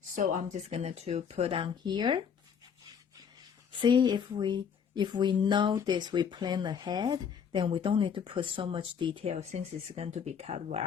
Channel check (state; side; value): quieter; right; 7.3 dB